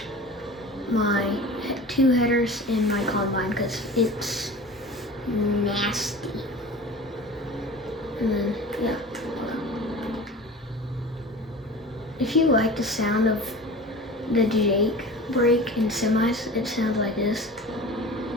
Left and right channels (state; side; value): normal; both; correlation 0.37